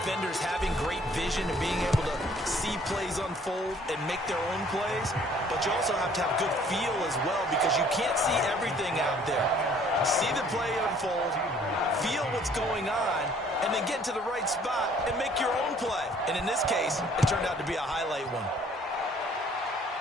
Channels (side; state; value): both; normal; correlation 0.58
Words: having great vision and being able to see plays unfold and make their own plays, but you also have to have good feel as well because you can't see everything out there. See the play unfold, feel what's going on, and then get to the right spot and make your own play. And in this case, it turned out to be a highlight one.